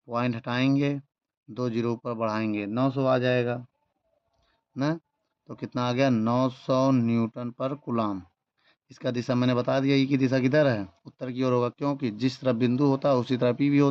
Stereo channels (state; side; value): identical; both; correlation 1.00